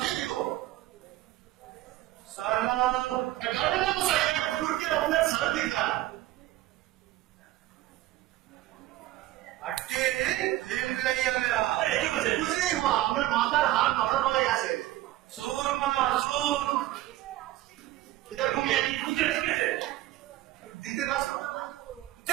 देखो সালাম গার্ডেন মশাই হুজুরকে আপনার সাথ দিতা আটকে প্রেম লাইয়া গেলা বুঝলি মা আপনার মাথার হাত আমার পড়ে গেছে সোর মামা সোর এটা ঘুমিয়ে বুঝে শিখেছে দিতে পারছো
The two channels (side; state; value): left; quieter; 15.8 dB